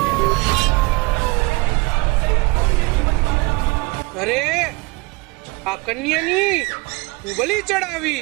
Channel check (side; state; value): left; quieter; 25.2 dB